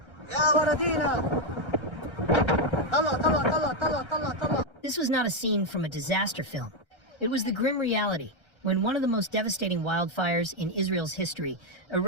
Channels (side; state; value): right; late; 1.3 ms